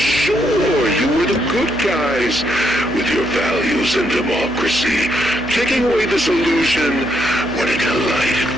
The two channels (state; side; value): noise; right; hum, 15 dB below the sound